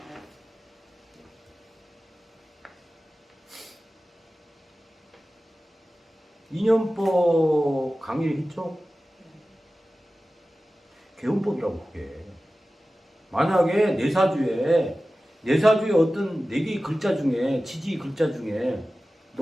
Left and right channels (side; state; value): both; normal; correlation 0.95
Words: 인연법 강의를 했죠? 개운법이라고 그게. 만약에 내사주에 어떤 4개의 글자 중에 지지 글자 중에